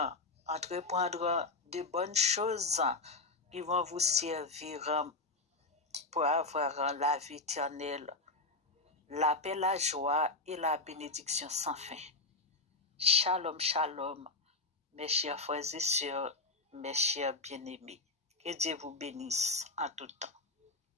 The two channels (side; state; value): right; quieter; 3.3 dB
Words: entreprendre de bonnes choses qui vont vous servir pour avoir la vie éternelle, la paix, la joie et la bénédiction sans fin. Shalom, shalom, mes chers frères et sœurs, mes chers bien-aimés. Que Dieu vous bénisse en tout temps.